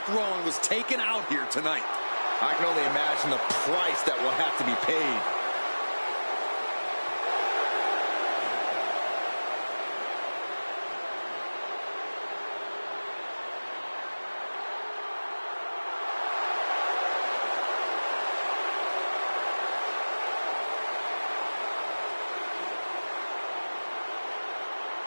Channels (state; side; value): inverted; both; correlation -1.00